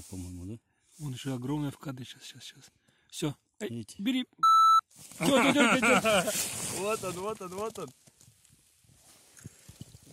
по-моему, да? Вон еще огромная в кадре. Сейчас. Все. Смотрите. Бери. Вот он.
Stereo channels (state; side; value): identical; both; correlation 1.00